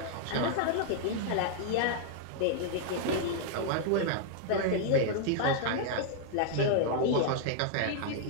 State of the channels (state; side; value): different; both; correlation -0.01